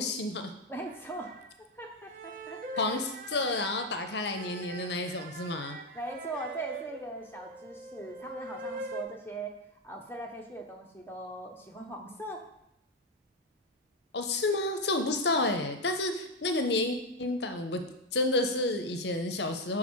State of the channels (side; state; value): both; normal; correlation 0.08